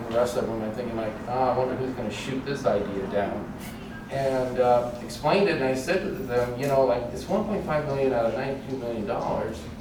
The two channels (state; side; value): identical; both; correlation 1.00